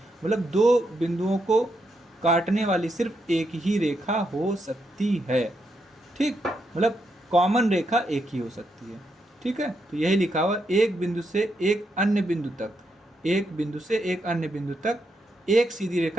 मतलब 2 बिंदुओं को काटने वाली सिर्फ एक ही रेखा हो सकती है। ठीक, मतलब कॉमन रेखा एक ही हो सकती है। ठीक है, तो यही लिखा हुआ, एक बिंदु से एक अन्य बिंदु तक, एक बिंदु से एक अन्य बिंदु तक एक सीधी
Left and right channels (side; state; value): both; normal; correlation 0.81